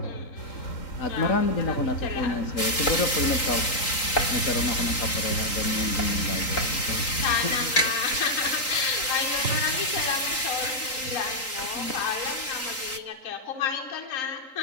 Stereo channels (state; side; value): late; right; 3.8 ms